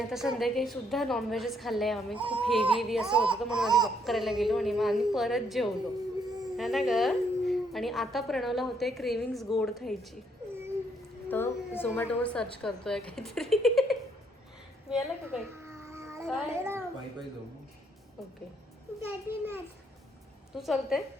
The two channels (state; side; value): normal; both; correlation 0.70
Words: संध्याकाळी सुद्धा नॉनव्हेजच खाल्लं आहे आम्ही. खूप हेवी असं होतं, म्हणून आधी वॉक करायला गेलो आणि मग आम्ही परत जेवलो है ना ग. आणि आता प्रणवला होते क्रेविंग्स गोड खायची, तर झोमॅटोवर सर्च करतोय काहीतरी. मिळालं का काही? काय? ओके. तू चलते?